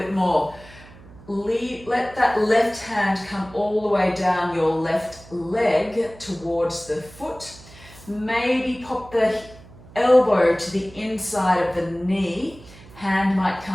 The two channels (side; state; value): right; noise; hum, 21 dB below the sound